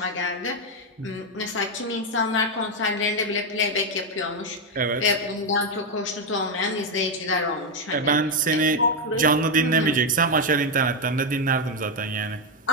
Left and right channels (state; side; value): normal; both; correlation 0.04